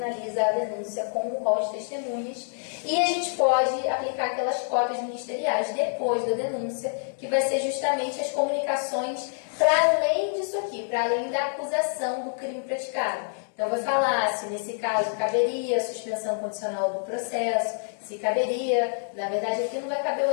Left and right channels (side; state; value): right; silent; digital silence